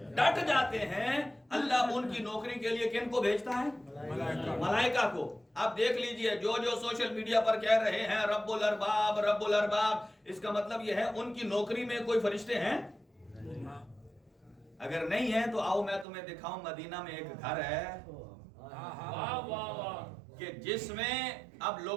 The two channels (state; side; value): drops out; left; at 16.1 s